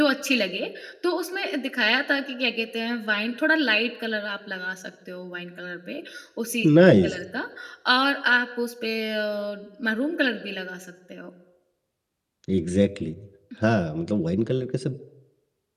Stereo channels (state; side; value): identical; both; correlation 1.00